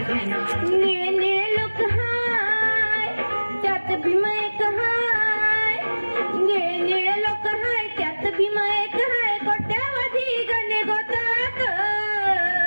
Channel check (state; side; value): inverted; both; correlation -1.00